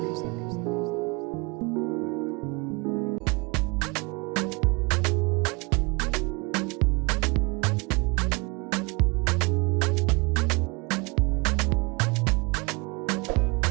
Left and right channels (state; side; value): quieter; left; 27.8 dB